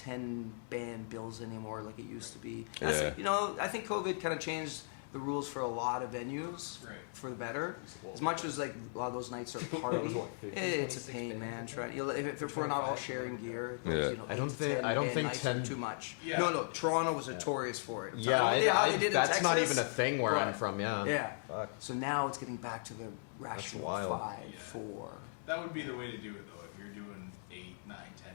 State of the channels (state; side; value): silent; right; digital silence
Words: band bills anymore like it used to Right. be. Yeah. I think COVID kind of changed the rules for a lot of venues Right. for the better. As much as like a lot of those nights are party. That was what, 50? It's a 26 pain, bands, man. I think. Try, if we're not all sharing gear, Yeah. I don't 8 to think- 10 I don't band think nights 10 are too much. Yeah. No, Toronto was notorious for it. Yeah, how they did in that's not Texas? even a thing where I'm Right. from. Yeah. Yeah. Fuck. So now it's getting back to the rational wild. 5, Yeah. 4. That would be the way to do it, though. If you're doing 8, 9,